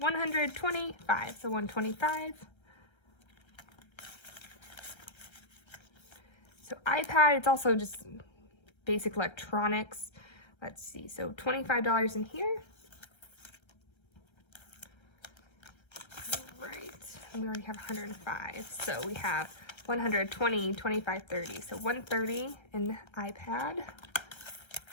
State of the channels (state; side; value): late; right; 1.3 ms